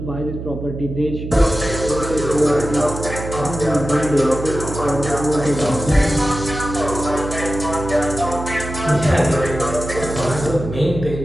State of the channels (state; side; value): noise; right; hum, 8 dB below the sound